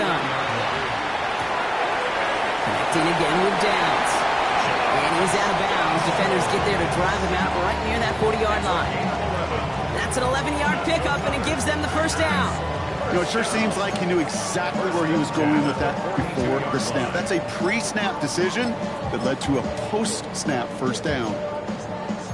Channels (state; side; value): identical; both; correlation 1.00